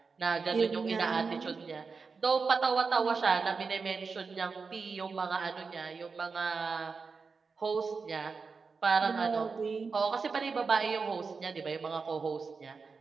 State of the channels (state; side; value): quieter; left; 4.8 dB